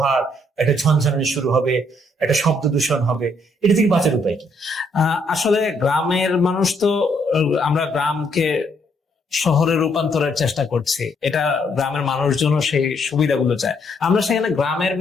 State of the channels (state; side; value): normal; both; correlation 0.71